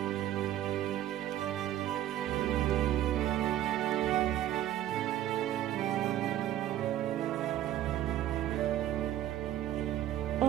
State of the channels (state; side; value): quieter; left; 12.7 dB